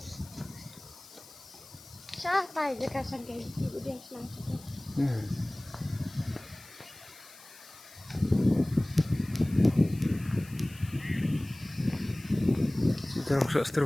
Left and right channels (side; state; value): left; noise; hiss, 20 dB below the sound